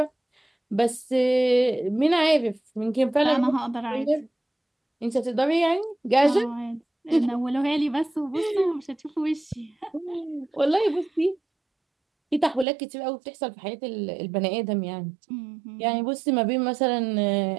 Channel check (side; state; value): left; drops out; at 12.7 s